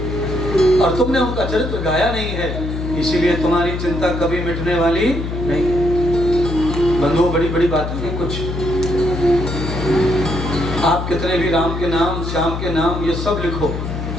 और तुमने उनका चरित्र गाया नहीं है, इसीलिए तुम्हारी चिंता कभी मिटने वाली नहीं। बंधुओं, बड़ी बड़ी बातें हैं कुछ। आप कितने भी राम के नाम, श्याम के नाम, ये सब लिखो,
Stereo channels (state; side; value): noise; left; hum, 4 dB below the sound